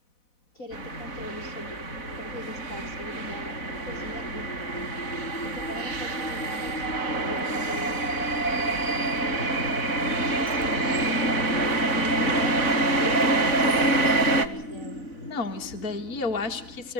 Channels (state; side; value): late; right; 4.0 ms